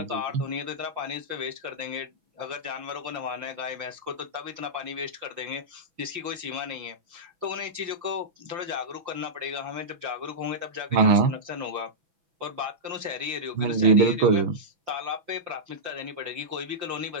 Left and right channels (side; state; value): left; late; 5.7 ms